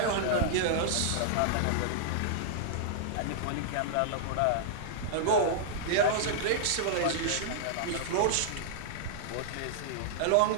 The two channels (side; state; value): both; different; correlation -0.01